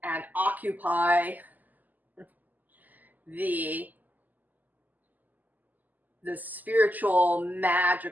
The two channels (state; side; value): late; left; 0.083 ms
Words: and occupy the spiritual,